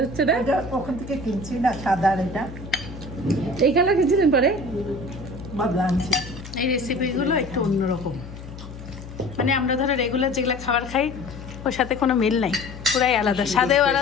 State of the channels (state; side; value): noise; left; hum, 13 dB below the sound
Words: হচ্ছে না? এটা ওখান থেকে কিনছি না, সাদা এটা এই কালার কিছুদিন পরে বদলা আনছি। এই রেসিপিগুলো একটু অন্যরকম, মানে আমরা ধরো রেগুলার যেগুলো খাবার খাই ওর সাথে কোনো মিল নাই, পুরাই আলাদা, স্বাদেও